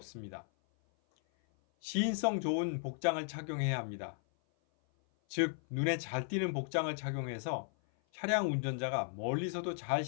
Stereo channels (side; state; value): right; silent; 54 dB below the other